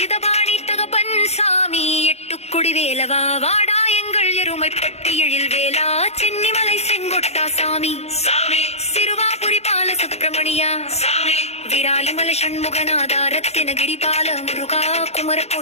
தகப்பன் சாமி, எட்டுக்குடி வேலவா, வாடா எங்கள் எருமைப்பட்டி எழில் வேலா, சென்னிமலை செங்கொட்டா சாமி, சிறுவாபுரி பால சுப்பிரமணியா, விராலிமலை சண்முகநாதா, ரத்தினகிரி பால முருகா,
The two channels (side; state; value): right; late; 0.31 ms